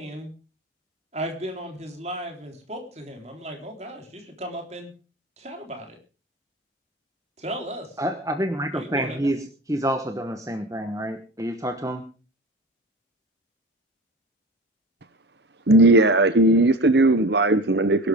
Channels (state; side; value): normal; both; correlation 0.33